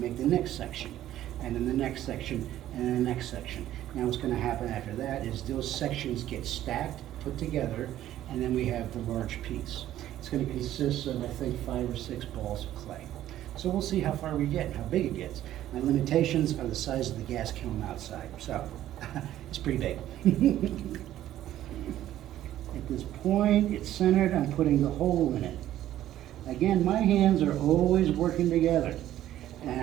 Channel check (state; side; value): quieter; left; 12.9 dB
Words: the next section. And then the next section, and then the next section. Now what's going to happen after that is those sections get stacked, put together, and then we have the large piece. It's going to consist of, I think, 5 or 6 balls of clay. So we'll see how far we get and how big it gets. My limitations are the size of the gas kiln outside, so it's pretty big. At this point, it's centered, I'm putting the hole in it. Again, my hands are always working together, and